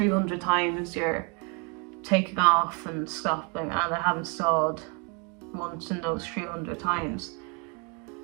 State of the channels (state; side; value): quieter; left; 33.2 dB